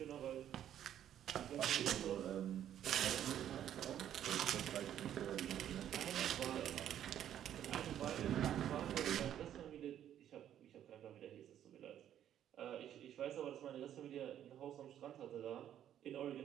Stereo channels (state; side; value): quieter; left; 10.7 dB